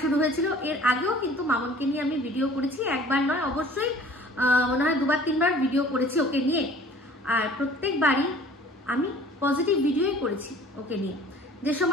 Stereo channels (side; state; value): both; normal; correlation 0.50